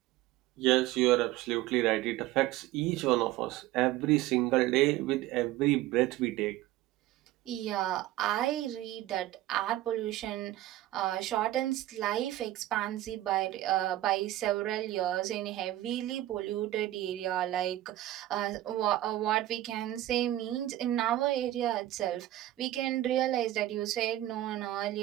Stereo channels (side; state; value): left; quieter; 15.0 dB